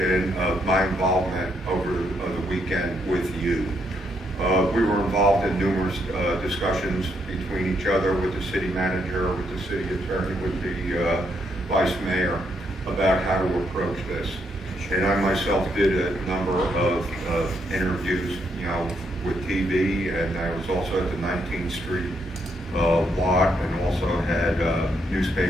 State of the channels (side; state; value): both; normal; correlation 0.76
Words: of my involvement over the weekend with you. We were involved in numerous discussions between each other, with the city manager, with the city attorney, with the vice mayor, about how to approach this. And I myself did a number of interviews, with TV, and I was also at the 19th Street lot, and also had